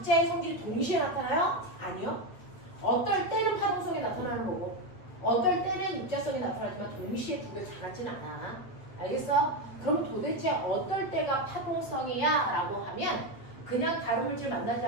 성질이 동시에 나타나요? 아니요. 어떨 때는 파동성이 나타나는 거고 어떨 때는 입자성이 나타나지만 동시에 두 개 다 같지는 않아. 알겠어? 그럼 도대체 어떨 때가 파동성이야? 라고 하면 그냥 다른 물질 만나지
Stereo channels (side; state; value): right; late; 8.6 ms